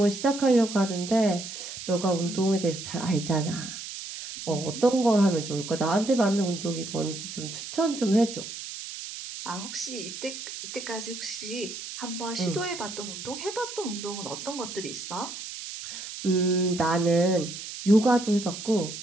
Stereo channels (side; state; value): right; noise; hiss, 9 dB below the sound